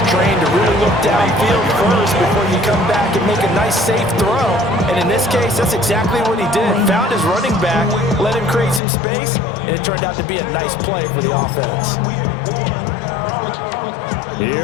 trained to really look downfield first before you come back and make a nice, safe throw. And in this case, that's exactly what he did. Found his running back, let him create some space, and it turned out to be a nice play for the offense.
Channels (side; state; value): right; drops out; at 8.8 s